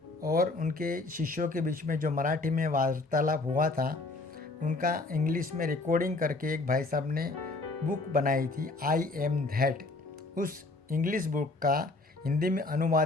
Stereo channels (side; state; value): right; quieter; 3.3 dB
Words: और उनके शिष्यों के बीच में जो मराठी में वार्तालाप हुआ था, उनका इंग्लिश में रिकॉर्डिंग करके एक भाई साहब ने बुक बनाई थी, आई एम दैट। उस इंग्लिश बुक का हिंदी में